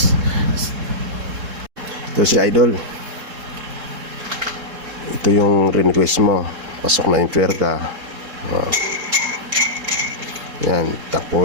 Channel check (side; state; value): left; late; 3.7 ms